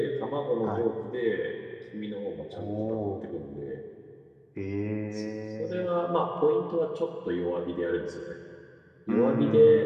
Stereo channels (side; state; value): both; identical; correlation 1.00